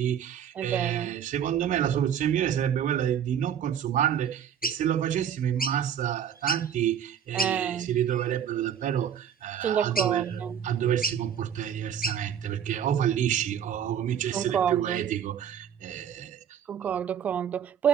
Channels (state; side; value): quieter; left; 8.9 dB